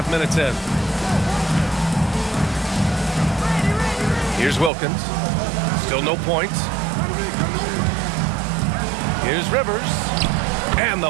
minutes in. Here's Wilkins. Still no points. Here's Rivers. And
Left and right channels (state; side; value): drops out; left; at 4.7 s